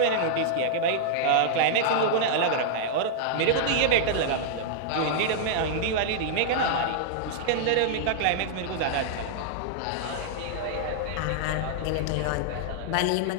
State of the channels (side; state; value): both; different; correlation -0.01